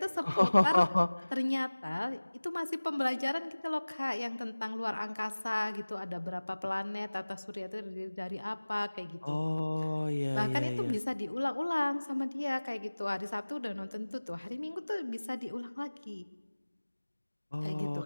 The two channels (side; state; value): both; inverted; correlation -1.00